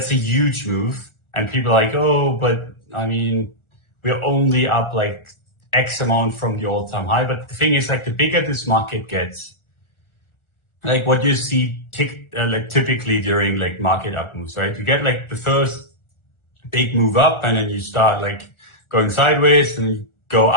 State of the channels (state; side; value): late; right; 1.4 ms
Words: a huge move. And people are like, oh, but I mean, we're only up like X amount from the all-time high. But the thing is, like, the bigger this market gets, like what you see like typically during like market up moves, right? You get like the first big move up and then you start like going sideways and you go